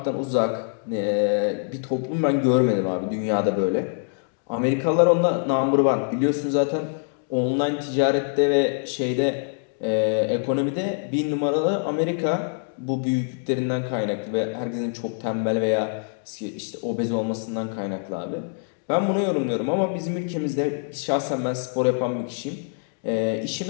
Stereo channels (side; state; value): right; silent; digital silence